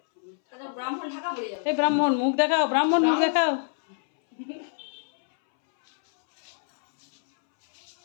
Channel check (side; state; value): right; silent; 61 dB below the other